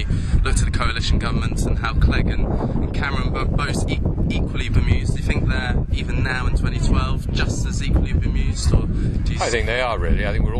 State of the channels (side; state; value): both; identical; correlation 1.00